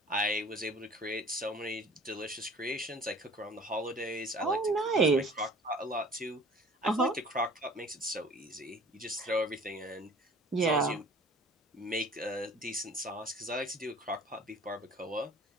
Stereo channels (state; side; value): normal; both; correlation 0.48